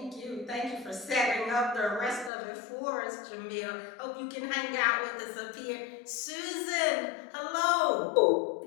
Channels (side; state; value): right; drops out; at 2.3 s